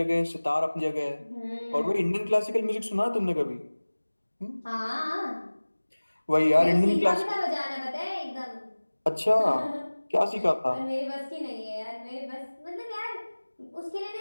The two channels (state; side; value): inverted; both; correlation -1.00